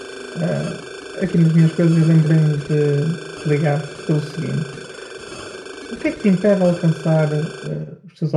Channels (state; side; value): identical; both; correlation 1.00